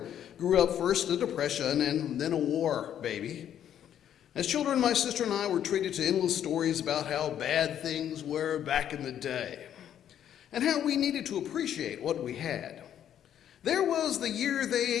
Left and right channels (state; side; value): quieter; right; 10.1 dB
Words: grew up first in a depression and then a war baby. As children, my sister and I were treated to endless stories about how bad things were back in the day and how we needed to appreciate what we had. There was the year they